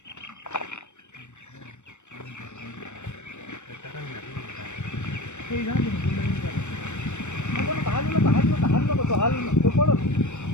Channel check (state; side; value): late; right; 0.84 ms